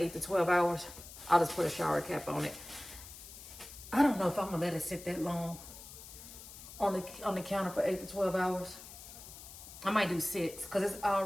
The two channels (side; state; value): left; noise; hiss, 15 dB below the sound